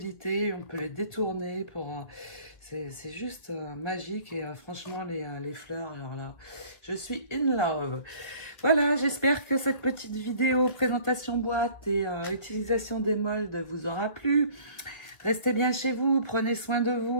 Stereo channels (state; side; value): late; right; 1.5 ms